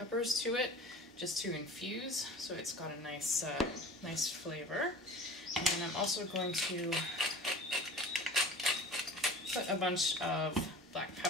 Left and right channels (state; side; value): normal; both; correlation 0.41